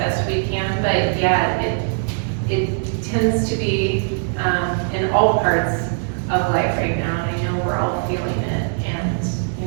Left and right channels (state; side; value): silent; left; 59 dB below the other